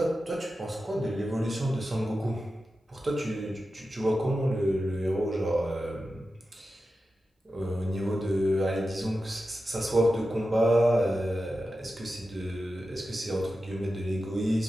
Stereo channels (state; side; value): normal; both; correlation 0.92